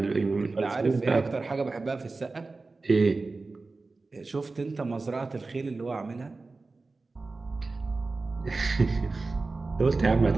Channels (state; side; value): quieter; left; 3.7 dB